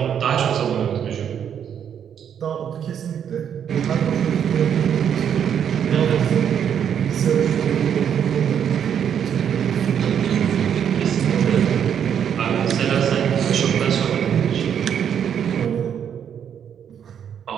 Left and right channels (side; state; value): left; quieter; 8.6 dB